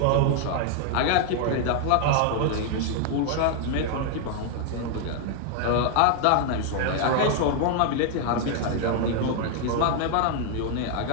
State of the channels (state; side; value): different; both; correlation 0.00